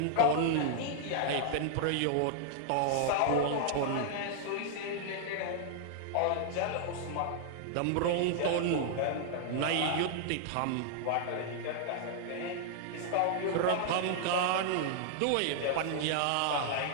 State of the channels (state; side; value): different; both; correlation 0.00